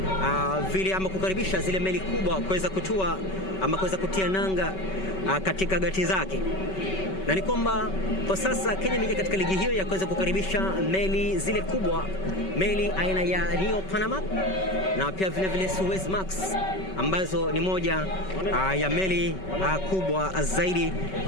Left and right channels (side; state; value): right; late; 5.3 ms